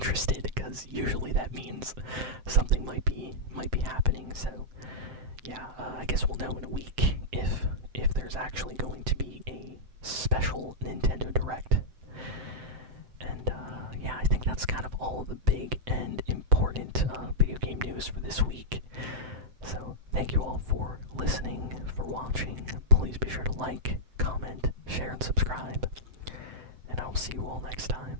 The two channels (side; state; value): left; late; 7.7 ms